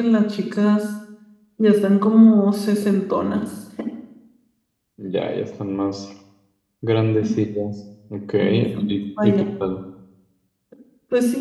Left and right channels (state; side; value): identical; both; correlation 1.00